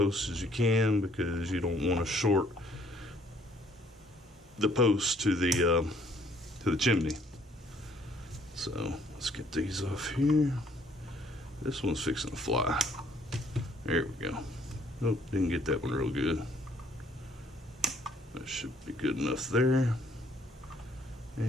as you can, because you don't want to short the post to the chimney. So let's get these off here. This one's fixing to fly. There we go. Nope, didn't get that one real good. That should be good enough there.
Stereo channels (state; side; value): normal; both; correlation 0.63